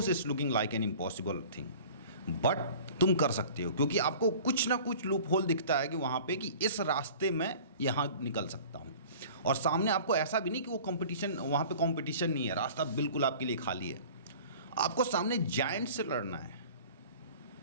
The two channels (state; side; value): inverted; both; correlation -0.44